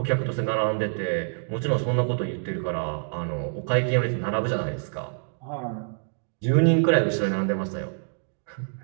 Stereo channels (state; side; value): silent; left; digital silence